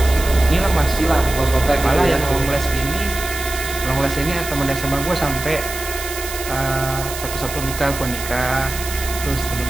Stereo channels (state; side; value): noise; right; hiss, 8 dB below the sound